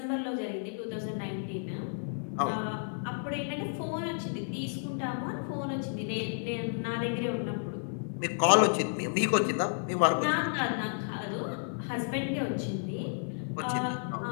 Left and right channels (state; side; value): silent; right; digital silence